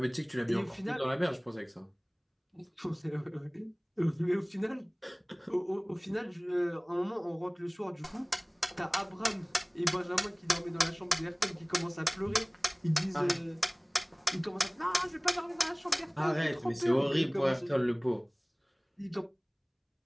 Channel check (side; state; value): both; identical; correlation 1.00